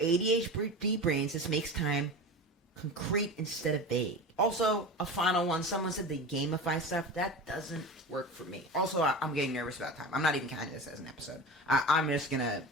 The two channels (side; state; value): both; normal; correlation 0.30